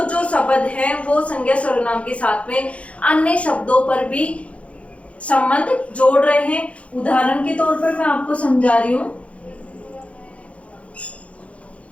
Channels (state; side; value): late; right; 0.063 ms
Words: जो शब्द है वो संज्ञा सर्वनाम के साथ में अन्य शब्दों पर भी संबंध जोड़ रहे हैं। उदाहरण के तौर पर मैं आपको समझा रही हूं।